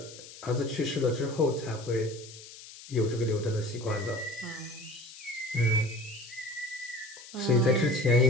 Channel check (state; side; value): noise; left; hiss, 16 dB below the sound